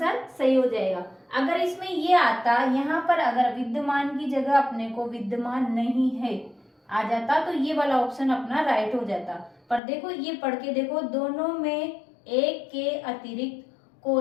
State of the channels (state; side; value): drops out; right; at 9.8 s